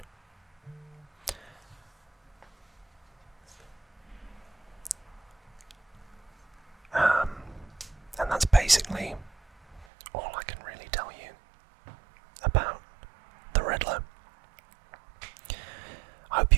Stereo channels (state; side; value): drops out; left; at 9.9 s